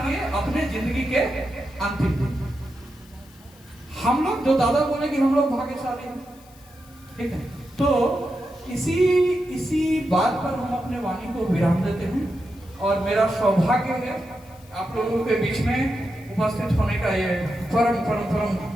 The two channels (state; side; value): noise; left; hiss, 26 dB below the sound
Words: अपने जिंदगी के अंतिम दिन। हम लोग जो दादा बोले कि हम लोग भाग्यशाली हैं, ठीक है, तो इसी बात पर हम अपने वाणी को विराम देते हैं। और मेरा सौभाग्य है आप लोगों के बीच में उपस्थित होने का ये परम